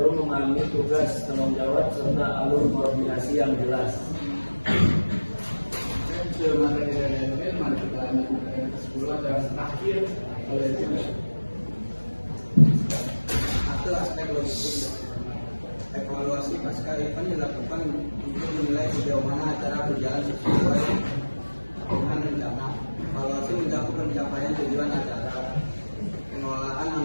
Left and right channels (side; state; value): both; inverted; correlation -1.00